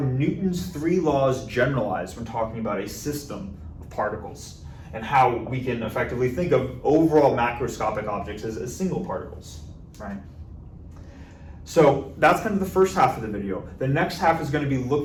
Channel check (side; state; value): both; identical; correlation 1.00